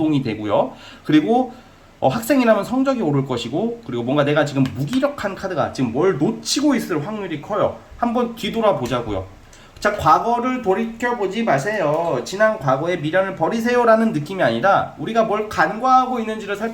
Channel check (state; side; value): identical; both; correlation 1.00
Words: 되고요. 그리고 학생이라면 성적이 오를 것이고, 그리고 뭔가 내가 지금 무기력한 카드가 지금 뭘 놓치고 있을 확률이 커요. 한번 뒤돌아보자고요. 자, 과거를 돌이켜보지 마세요. 지난 과거의 미련을 버리세요라는 느낌이 아니라 우리가 뭘 간과하고 있는지를